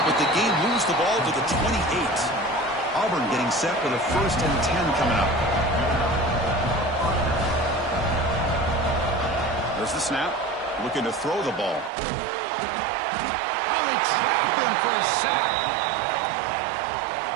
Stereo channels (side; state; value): left; drops out; at 11.9 s